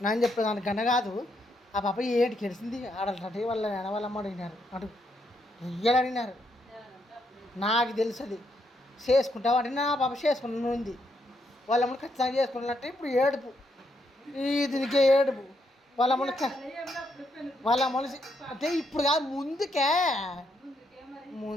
నేను చెప్పేది, దానికి గన్న కాదు. ఆ పాప ఏంటి గెలిచింది ఆడాలంటే వాళ్ళ వాళ్ళమ్మ అడిగినారు, అటు రియల్ అడిగినారు. నాకు తెలుస్తుంది చేసుకుంటావు అంటే నా పాప చేసుకుని ఉంది, వాళ్ళమ్మని ఖచ్చితంగా చేసుకున్నట్టు. ఇప్పుడు ఏడుపు, ఈ దీనికే ఏడుపు. వాళ్ళ మనిషి అంటే ఇప్పుడు కాదు,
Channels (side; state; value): both; normal; correlation 0.77